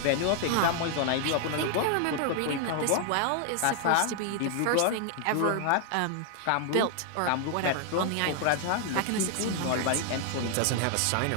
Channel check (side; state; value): both; different; correlation 0.00